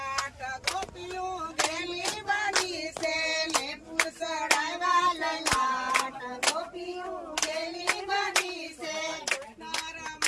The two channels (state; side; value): identical; both; correlation 1.00